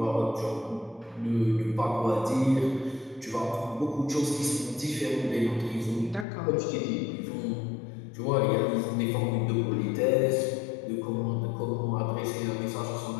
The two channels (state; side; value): drops out; right; at 6.2 s